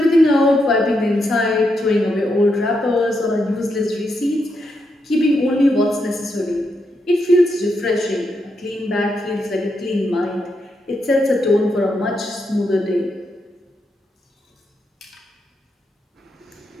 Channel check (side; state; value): both; normal; correlation 0.82